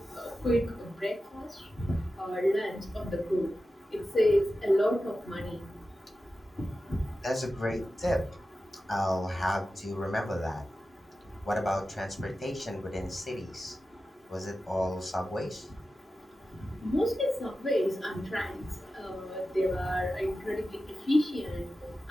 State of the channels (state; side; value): normal; both; correlation 0.93